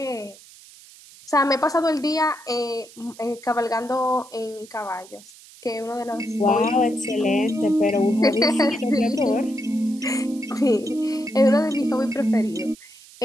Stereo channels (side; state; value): right; noise; hiss, 22 dB below the sound